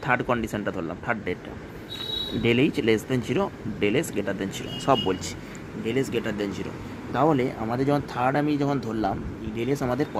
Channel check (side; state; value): both; identical; correlation 1.00